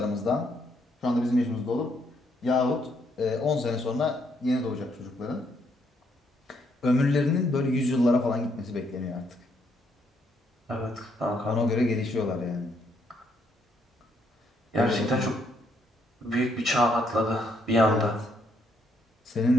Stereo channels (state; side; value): normal; both; correlation 0.72